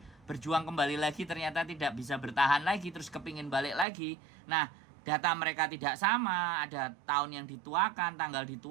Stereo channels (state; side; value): drops out; left; at 3.9 s